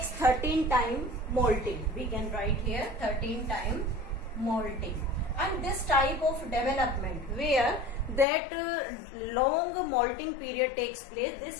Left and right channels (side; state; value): right; drops out; at 8.2 s